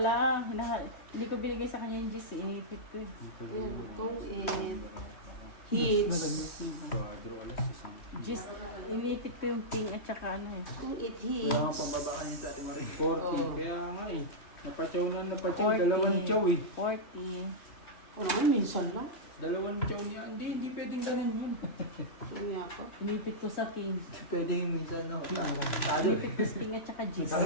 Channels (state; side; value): late; right; 3.0 ms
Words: Hindi ko binigay sa kanya yung gis. Inipit ko eh. Itong it. Hits. Gis, inipit ko yung king at saka ano eh. Itong it Kaya nga hits. pambaba ka niya sa ating Marie. 40. Oo. Kaya nga eh. Napachaw na napachaw. 40. Dalawang chow eh. 40. O naman, minsan lang. Dalawang chow niya. Hindi pwedeng ganun yun. Kaya pa. Inipit ko sa king. Pwede yung minsan, no? Tado. Inipit ko sa king at saka gis.